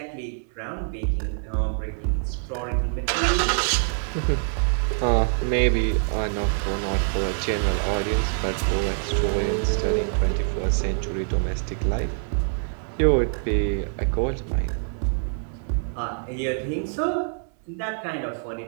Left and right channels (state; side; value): silent; left; 62 dB below the other